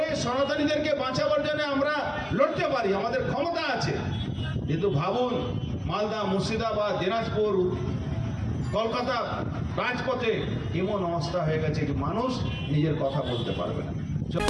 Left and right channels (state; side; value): identical; both; correlation 1.00